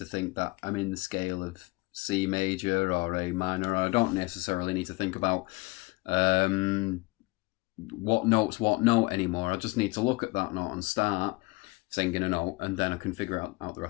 think that I'm in the scale of C major or A minor. I don't necessarily need to think about what note's what note anymore. I just need to look at that note and start singing a note, and then I can figure out the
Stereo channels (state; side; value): quieter; right; 24.2 dB